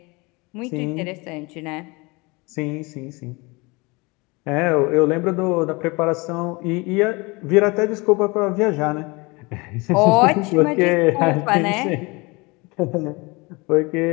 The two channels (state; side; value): quieter; right; 26.0 dB